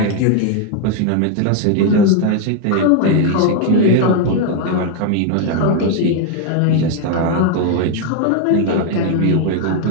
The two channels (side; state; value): both; different; correlation 0.01